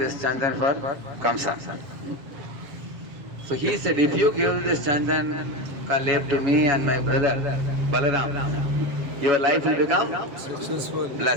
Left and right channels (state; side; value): late; left; 7.1 ms